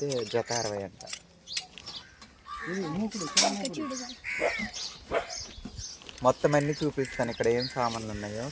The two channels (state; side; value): identical; both; correlation 1.00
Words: జత 60 అంట. మొత్తం అన్నీ చూపిస్తాను ఇక్కడ ఏం సామాన్లు ఉన్నాయో